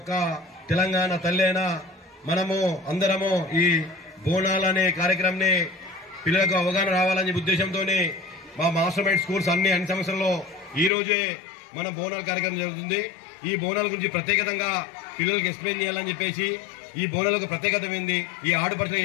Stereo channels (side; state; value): right; drops out; at 10.9 s